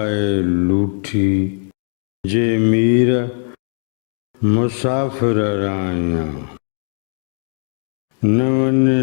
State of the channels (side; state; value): right; silent; 59 dB below the other